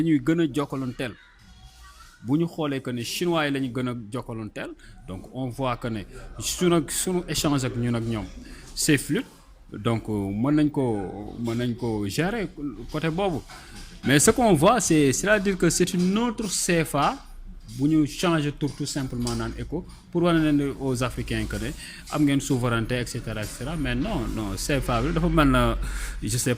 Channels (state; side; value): identical; both; correlation 1.00